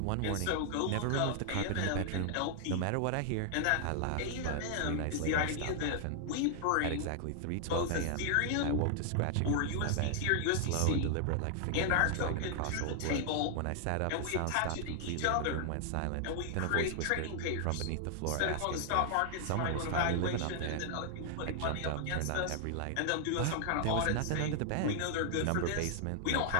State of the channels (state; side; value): different; both; correlation 0.00